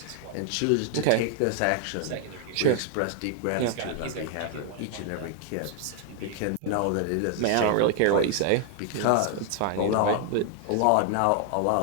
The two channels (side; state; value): both; different; correlation 0.00